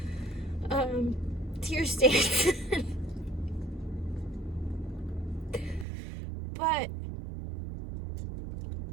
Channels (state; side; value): drops out; left; at 5.9 s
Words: tear stains. But